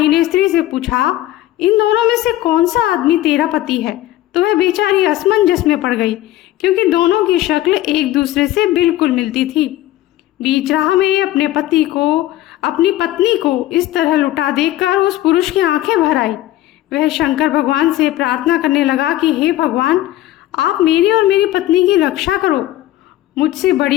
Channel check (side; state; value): right; quieter; 14.8 dB